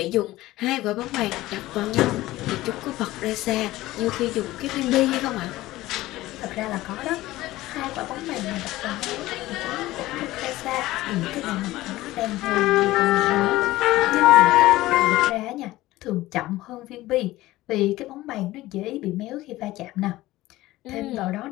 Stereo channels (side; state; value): right; quieter; 17.2 dB